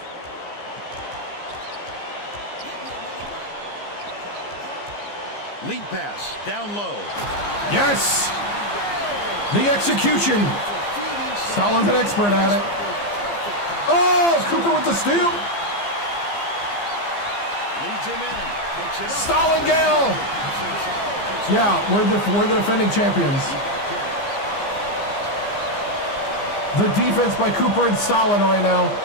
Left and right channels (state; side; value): late; right; 15 ms